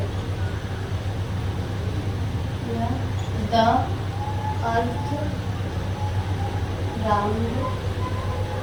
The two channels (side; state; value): both; identical; correlation 1.00